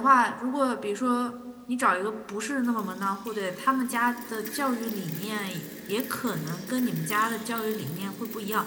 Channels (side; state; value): both; identical; correlation 1.00